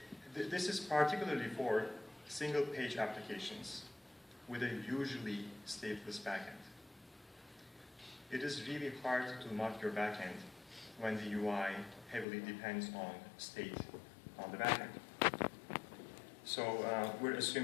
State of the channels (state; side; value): drops out; right; at 12.2 s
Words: this is particularly for single-page applications with a usually stateless backend. It is really hard to mock your backend when the UI heavily depends on state on the backend. So we're